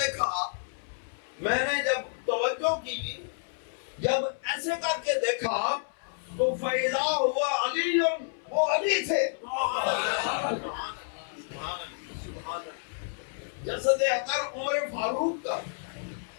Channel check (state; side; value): silent; right; 58 dB below the other